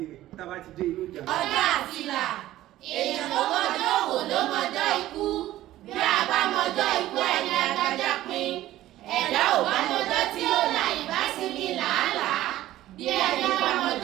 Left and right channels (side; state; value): left; quieter; 14.7 dB